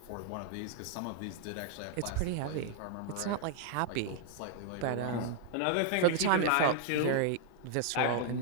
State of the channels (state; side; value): different; both; correlation 0.00